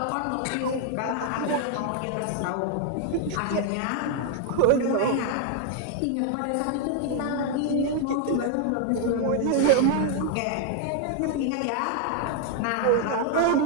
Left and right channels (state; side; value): different; both; correlation 0.00